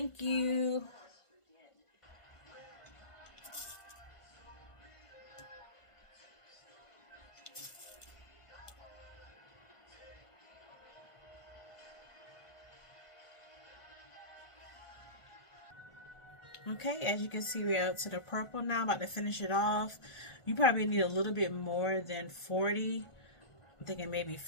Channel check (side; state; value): right; late; 1.5 ms